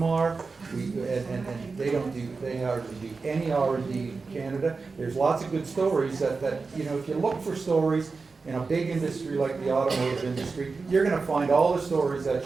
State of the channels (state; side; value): quieter; left; 4.3 dB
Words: And they hardly do any R&D in Canada. There's lots of good stories that if you look for stories in a big industry like the automotive industry, you're going to find all the stories